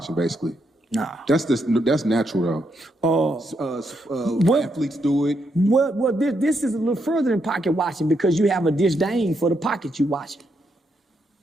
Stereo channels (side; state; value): both; normal; correlation 0.79